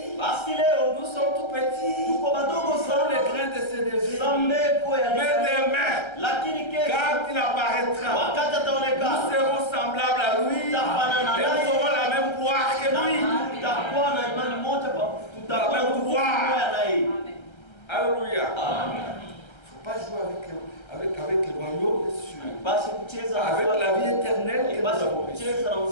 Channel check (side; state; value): right; late; 1.3 ms